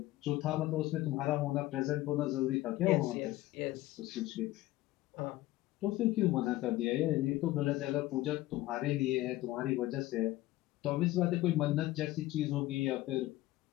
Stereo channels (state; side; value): quieter; right; 16.9 dB